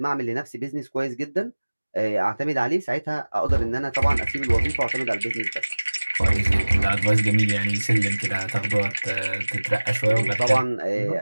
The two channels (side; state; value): both; inverted; correlation -1.00